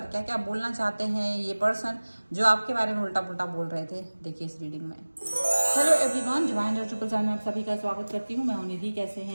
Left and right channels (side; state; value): both; inverted; correlation -1.00